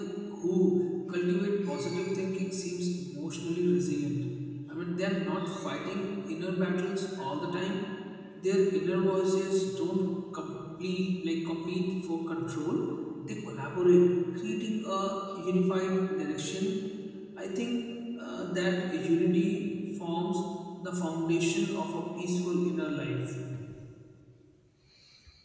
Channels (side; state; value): both; identical; correlation 1.00